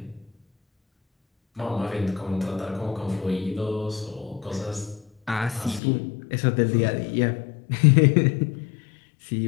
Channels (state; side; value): drops out; right; at 5.8 s